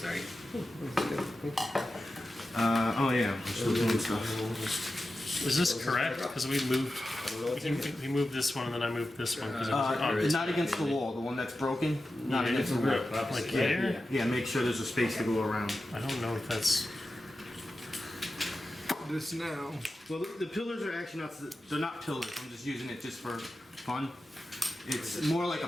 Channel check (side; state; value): both; normal; correlation 0.92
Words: Oh yeah. We're still doing stuff. Is this correct? Because we moved. I don't know what's in here. We moved this one and then I moved this one because it was obvious. Not against the wall. The one that's broken. Not Yeah, against the wall. Like here. Yeah. Make sure there's a space to go around. I don't know if that's. This now. Well, the pillars are actually not. They're not pillars. I'm just using it just for fun. It's more like